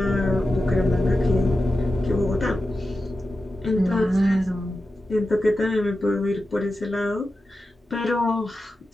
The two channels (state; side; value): normal; both; correlation 0.92